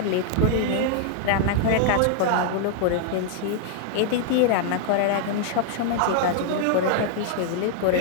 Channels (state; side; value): different; both; correlation -0.01